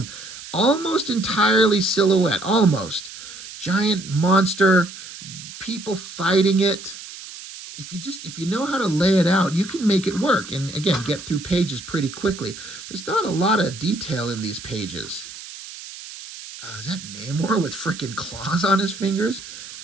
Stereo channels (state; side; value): noise; right; hiss, 13 dB below the sound